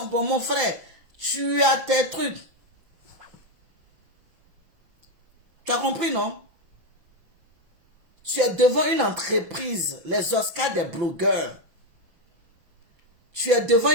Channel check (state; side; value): late; left; 5.9 ms